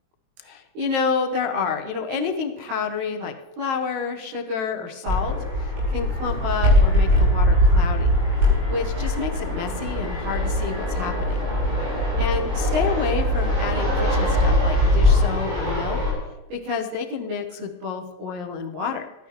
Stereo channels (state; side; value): late; left; 23 ms